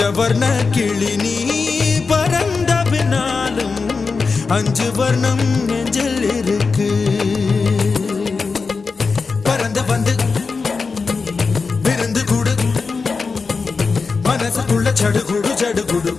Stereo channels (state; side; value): quieter; right; 4.6 dB